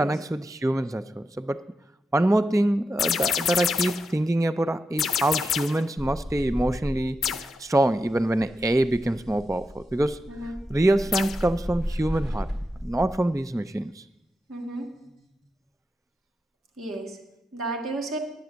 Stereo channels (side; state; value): both; normal; correlation 0.87